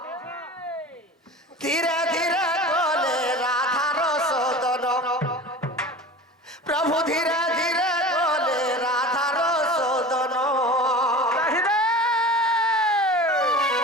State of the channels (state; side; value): normal; both; correlation 0.35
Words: ধীরে ধীরে বলে রাধার সদন প্রভু ধীরে ধীরে বলে রাধার সদন